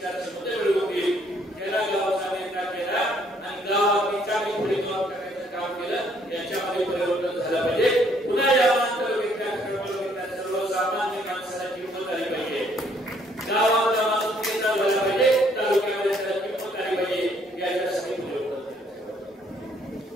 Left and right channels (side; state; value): both; normal; correlation 0.66